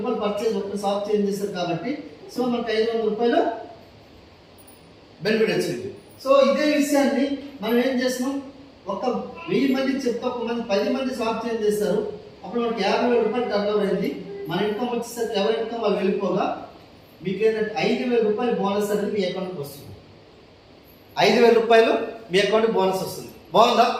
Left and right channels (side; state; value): both; identical; correlation 1.00